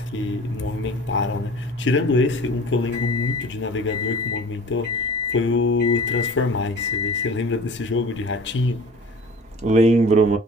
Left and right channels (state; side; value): normal; both; correlation 0.41